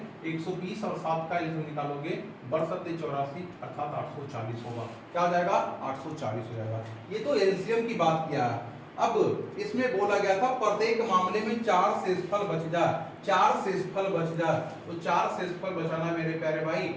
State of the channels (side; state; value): both; identical; correlation 1.00